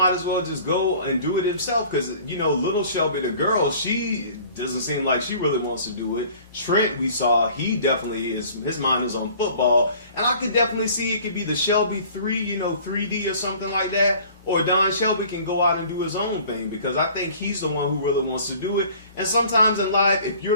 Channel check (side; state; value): both; inverted; correlation -0.50